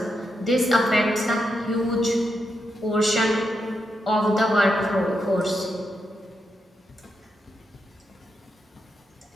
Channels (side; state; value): both; normal; correlation 0.84